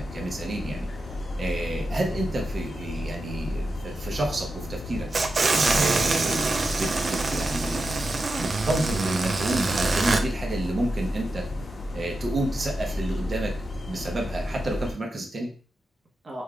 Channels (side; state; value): both; normal; correlation 0.89